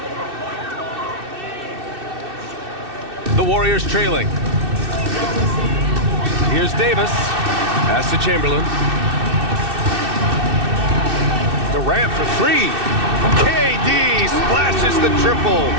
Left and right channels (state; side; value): late; left; 2.6 ms